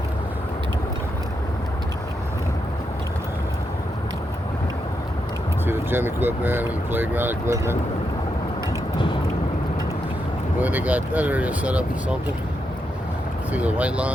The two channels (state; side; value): normal; both; correlation 0.83